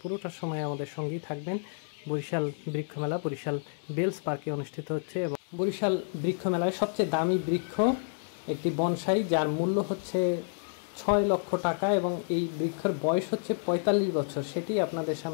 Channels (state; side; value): silent; right; 58 dB below the other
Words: পুরোটা সময় আমাদের সঙ্গেই থাকবেন। বরিশাল বৃক্ষ মেলা বরিশাল বেলস পার্কে অনুষ্ঠিত হচ্ছে এবং বরিশাল বৃক্ষ মেলায় সবচেয়ে দামি বৃক্ষ একটি বনসাই, যার মূল্য হচ্ছে 6 লক্ষ টাকা এবং এই বৃক্ষের বয়স হচ্ছে 45 বছর। সেটি আপনাদের